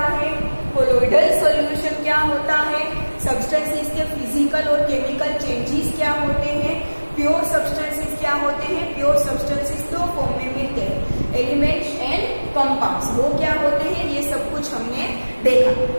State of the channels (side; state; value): both; inverted; correlation -1.00